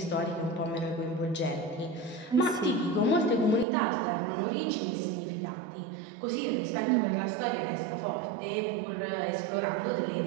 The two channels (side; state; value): left; drops out; at 3.7 s